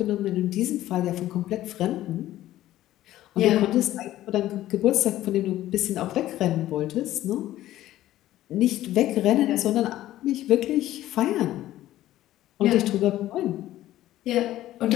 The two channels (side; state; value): right; quieter; 14.2 dB